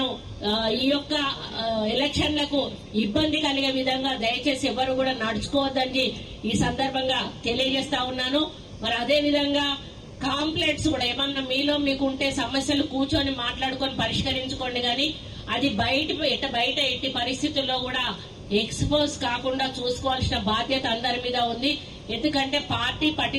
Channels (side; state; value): both; identical; correlation 1.00